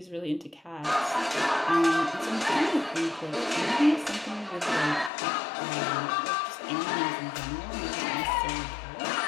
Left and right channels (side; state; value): right; drops out; at 5.1 s